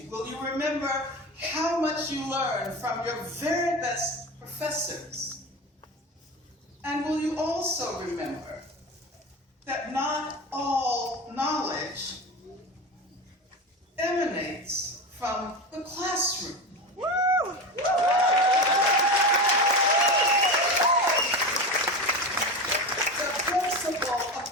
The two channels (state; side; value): normal; both; correlation 0.24